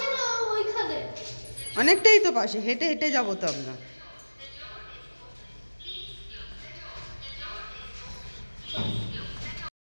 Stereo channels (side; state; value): both; inverted; correlation -1.00